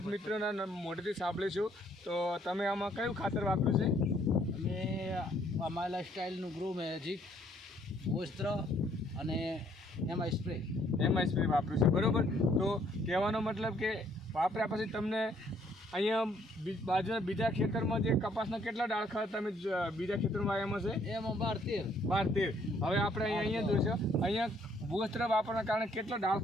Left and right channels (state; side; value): normal; both; correlation 0.65